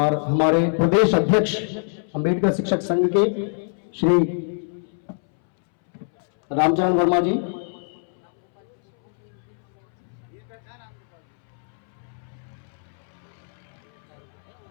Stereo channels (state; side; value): silent; right; 63 dB below the other